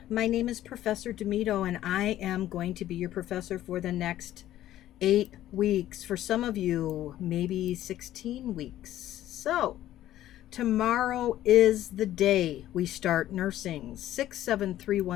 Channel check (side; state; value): right; quieter; 13.3 dB